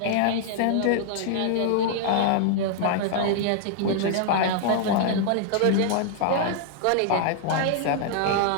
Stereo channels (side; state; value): both; different; correlation -0.01